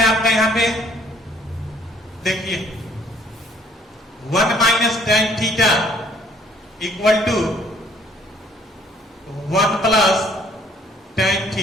आपका यहाँ पे देखिए 1 minus tan theta equal to 1 plus tan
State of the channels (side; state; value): both; normal; correlation 0.60